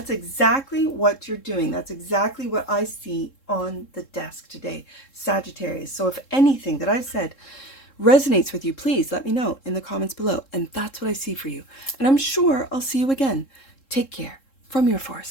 exactly what you're doing. That's exactly what I see on the desk today, Sagittarius. So if anything that I've said resonates with you, please let me know in the comments below. And that's what I see for you. And I'm sure I'll see you again. Take care. From your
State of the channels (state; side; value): late; right; 3.7 ms